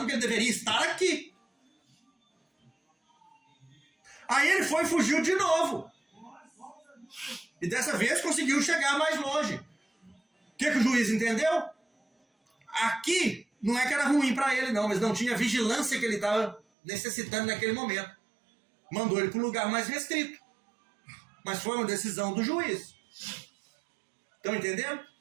que ele deveria estar aqui. Aí ele foi e fugiu de novo. E dessa vez conseguiu chegar mais longe. O que o juiz entendeu? Aqui não é que era ruim para ele não, mas não tinha a vigilância que ele estava necessitando naquele momento. Mandou ele para um lugar mais restrito. Mas foi uma decisão do juiz. Estão entendendo?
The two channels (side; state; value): left; drops out; at 16.6 s